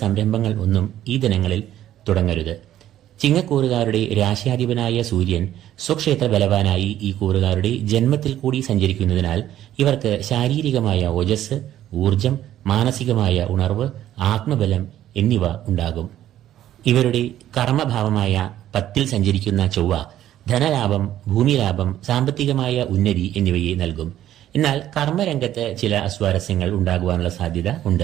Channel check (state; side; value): quieter; left; 12.3 dB